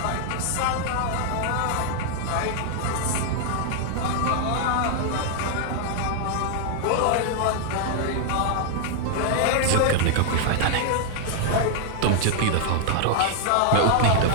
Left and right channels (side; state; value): both; different; correlation 0.00